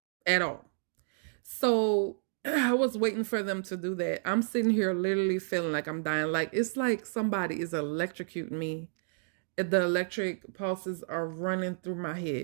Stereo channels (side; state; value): left; silent; digital silence